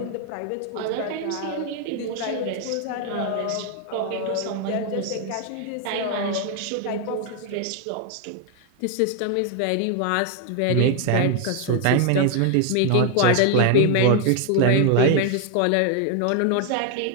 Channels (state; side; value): different; both; correlation 0.01